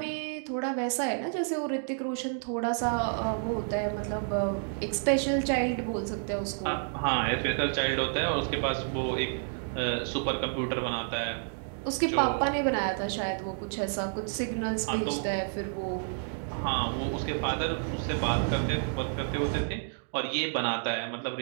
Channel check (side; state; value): left; silent; digital silence